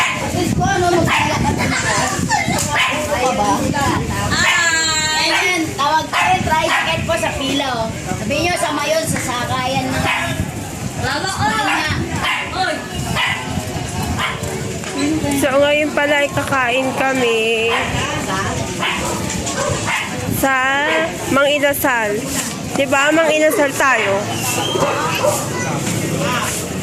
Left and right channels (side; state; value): both; identical; correlation 1.00